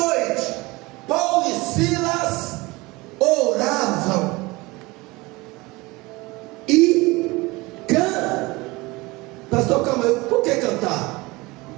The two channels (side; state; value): left; quieter; 22.7 dB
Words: Paulo e Silas oravam e cantavam. Pastor, calma aí, por que cantar?